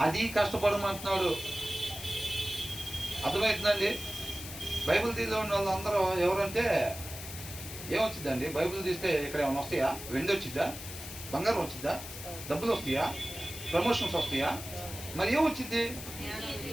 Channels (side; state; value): left; noise; hiss, 11 dB below the sound